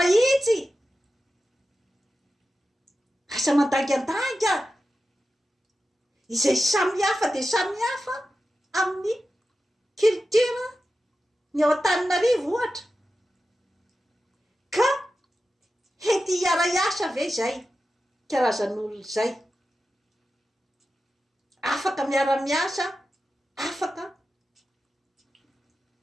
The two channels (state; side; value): normal; both; correlation 0.92